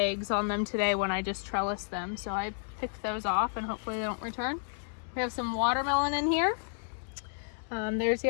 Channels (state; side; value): silent; right; digital silence